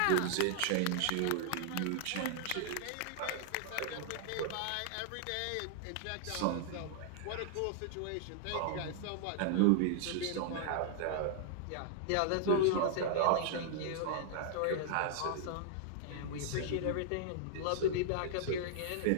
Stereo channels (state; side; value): different; both; correlation -0.01